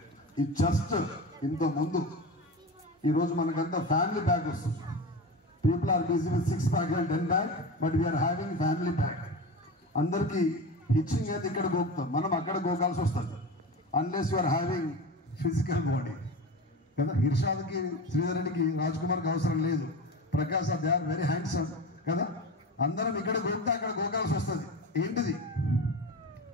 ఈ జస్ట్ ఇంత ముందు ఈరోజు మనకంతా ఫ్యామిలీ ప్యాక్ వస్తుంది. People are busy with 6 pack and 10 pack, but we are having family pack. అందరికీ హిచ్చింగ్ అయితే ఇక్కడ గోకుతాం, మనం అక్కడ గోకాల్సి వస్తుంది. Unless you are having physical body కదా. ఇర్షాద్కి, శ్రీధరునికి, రాజ్ కుమార్కి అవసరం లేదు. Prakash they are very handsome కదా. అందరం ఇక్కడ గోక్తా అక్కడ గోకాల్సి వస్తుంది. ఏంటిది?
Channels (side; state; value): both; normal; correlation 0.27